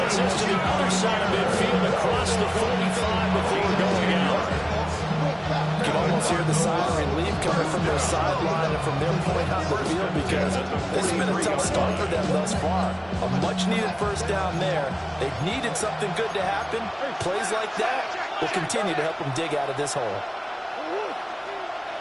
gets us to the other side of midfield across the 45 before going out. You can almost hear the siren relief coming from their sideline and from their point on the field because this has been a tough start for them thus far. A much-needed 1st down there. They've needed something good to happen. Plays like that will continue to help them dig out of this hole.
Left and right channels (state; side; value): identical; both; correlation 1.00